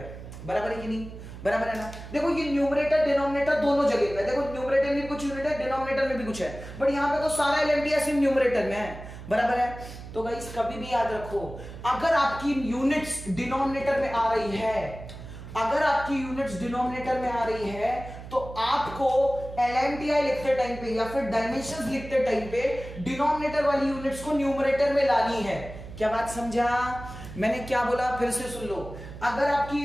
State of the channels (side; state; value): right; noise; hum, 13 dB below the sound